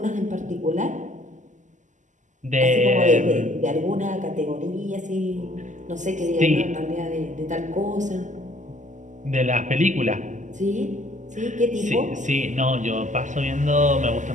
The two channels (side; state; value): left; late; 0.36 ms